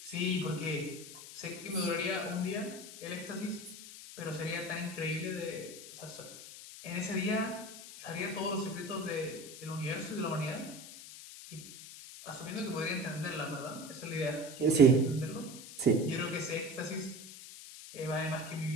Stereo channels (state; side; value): noise; left; hiss, 13 dB below the sound